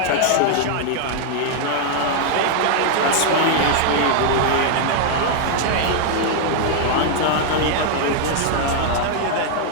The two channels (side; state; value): both; different; correlation 0.00